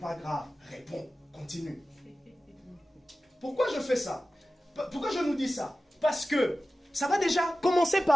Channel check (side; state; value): both; normal; correlation 0.95